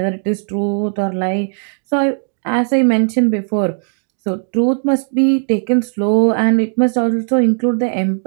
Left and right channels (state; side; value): silent; left; digital silence